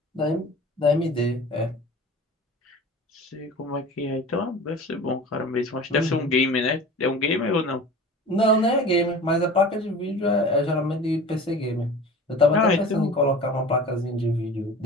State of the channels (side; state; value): both; normal; correlation 0.38